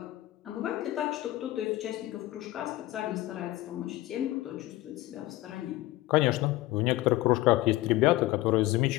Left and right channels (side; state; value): right; quieter; 17.2 dB